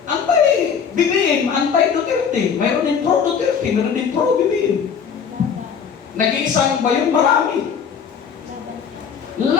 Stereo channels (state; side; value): quieter; right; 6.9 dB